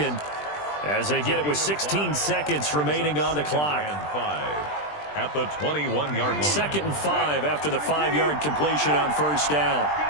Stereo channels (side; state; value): right; late; 20 ms